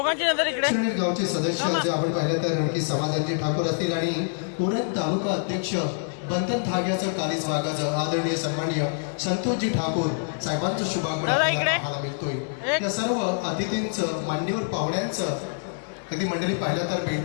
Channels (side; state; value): right; silent; digital silence